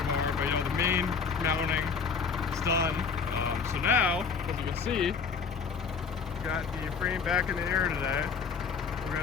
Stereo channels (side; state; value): right; quieter; 5.8 dB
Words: bar, but you know, the main mounting is done. So now, as you can see, we got the frame back in the air today. We're